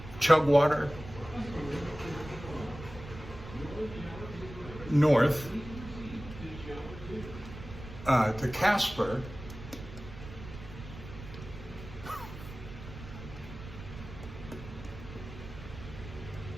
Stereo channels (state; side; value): noise; right; rumble, 13 dB below the sound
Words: Chugwater, north to Casper.